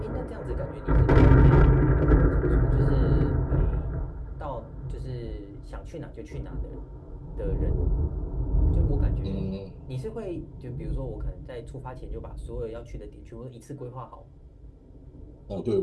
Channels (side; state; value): both; identical; correlation 1.00